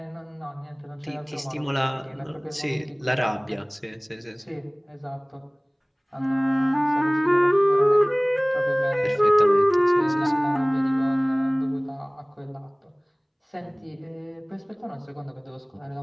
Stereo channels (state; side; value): identical; both; correlation 1.00